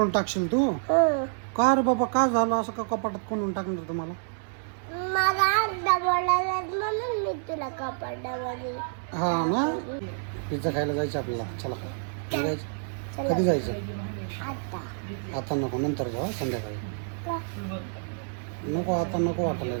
टाकशील तू? का रे बाबा, काय झालं असं? का कपाटात कोंडून टाकणार तुम्हाला? मला अंडा बोलायला म्हणून मी तुला कपड्यामध्ये. हा ना, पिझ्झा खायला जायचं आपल्याला. चला, कधी जायचं? कधी जायचं? आता आता नको, नंतर जाऊ संध्याकाळी. का? नको, आता नको वाटलं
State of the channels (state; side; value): silent; left; digital silence